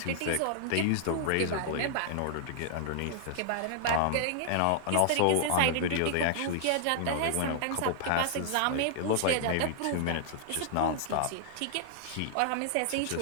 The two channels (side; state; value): both; different; correlation -0.01